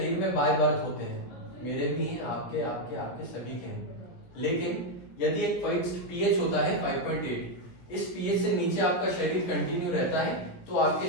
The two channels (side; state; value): right; late; 17 ms